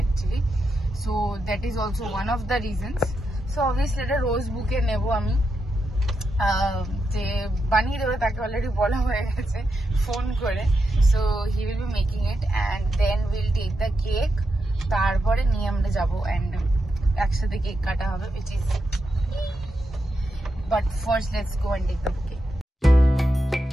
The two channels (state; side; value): normal; both; correlation 0.85